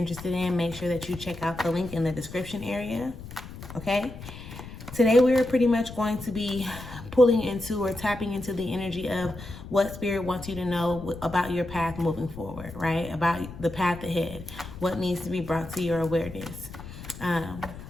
in, make sure that you check out the link in the description area, okay? Today, we're pretty much going to be pulling into or tapping into the energy of what Spirit wants you to know about your path moving forward, right? About the path ahead, what needs to be brought to your awareness.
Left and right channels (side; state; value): left; noise; rumble, 13 dB below the sound